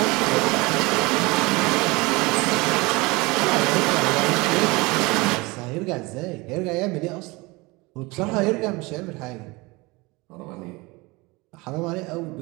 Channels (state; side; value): quieter; left; 24.1 dB